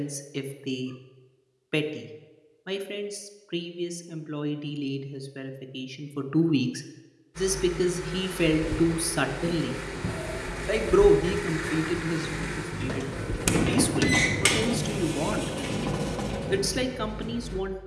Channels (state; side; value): identical; both; correlation 1.00